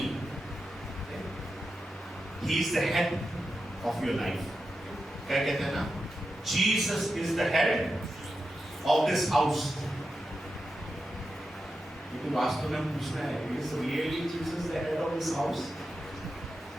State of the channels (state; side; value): normal; both; correlation 0.89